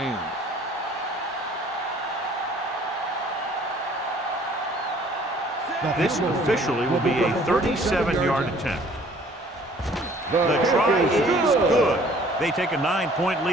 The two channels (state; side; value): normal; both; correlation 0.56